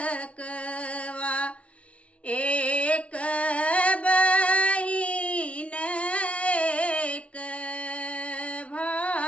एक बहिन एक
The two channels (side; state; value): right; late; 0.063 ms